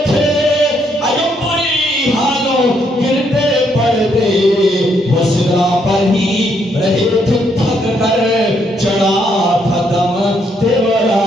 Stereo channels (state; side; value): normal; both; correlation 0.73